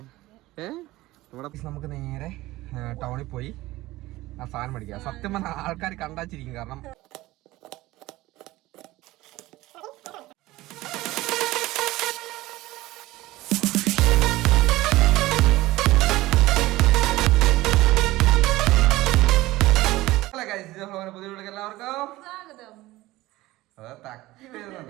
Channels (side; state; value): left; quieter; 18.0 dB